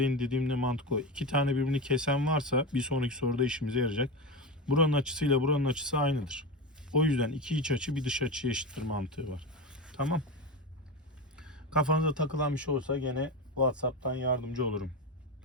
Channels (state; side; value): normal; both; correlation 0.20